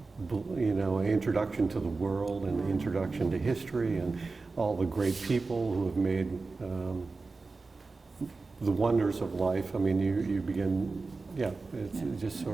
introduction to the world and the introduction to history and all the great people who have made the wonders of life. I mean, you begin, it's just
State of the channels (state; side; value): quieter; left; 3.9 dB